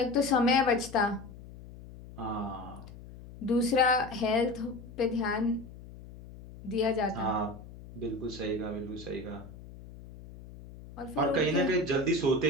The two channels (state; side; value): noise; left; hum, 16 dB below the sound